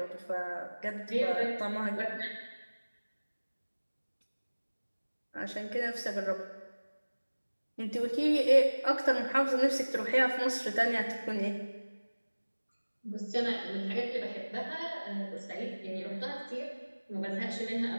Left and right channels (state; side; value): inverted; both; correlation -1.00